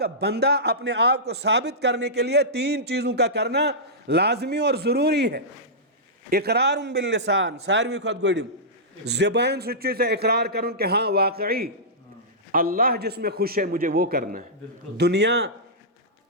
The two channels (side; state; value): both; normal; correlation -0.15